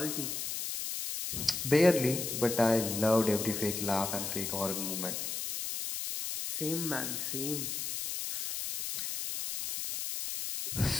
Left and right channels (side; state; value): left; noise; hiss, 3 dB below the sound